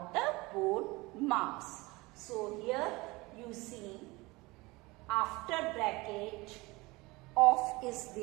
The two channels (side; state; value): left; quieter; 22.8 dB